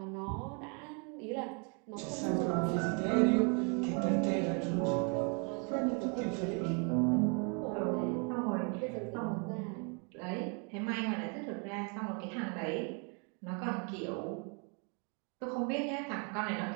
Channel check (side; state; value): left; quieter; 36.0 dB